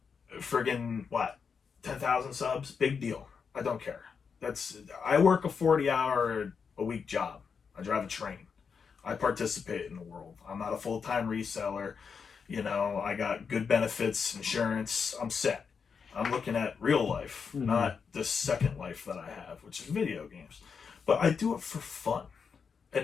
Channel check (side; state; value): right; quieter; 6.0 dB